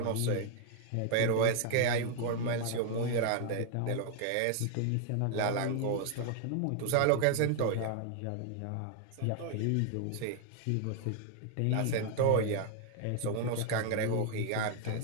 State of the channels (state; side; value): different; both; correlation 0.00